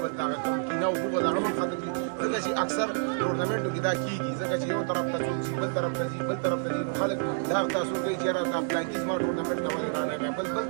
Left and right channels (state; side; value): silent; left; digital silence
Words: بل ته هغه کوم کینه او بغض هغه هم ختم دي. ځکه چې اکثر ټورنمنټو کې دا کېږي ځکه چې یو طرف ته ځي بل طرف ته ځي بل طرف ته ځي نو خلک دا تاسو کوي چې یاره دا پلانکي زما ټورنمنټ نه ولې رانغی، بل